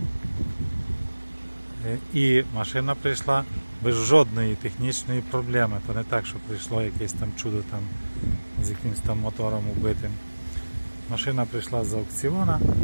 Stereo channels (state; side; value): inverted; both; correlation -1.00